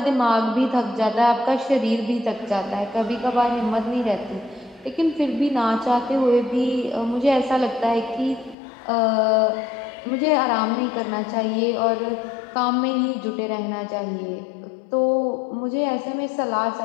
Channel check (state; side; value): drops out; right; at 8.6 s